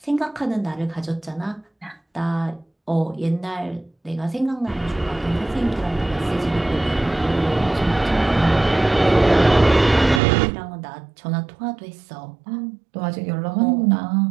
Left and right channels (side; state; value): left; drops out; at 10.2 s